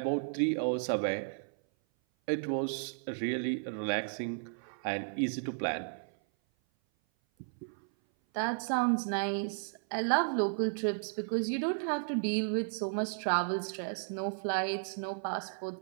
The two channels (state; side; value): silent; left; 55 dB below the other